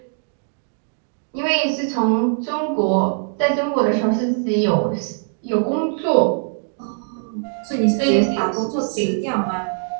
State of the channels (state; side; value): silent; left; digital silence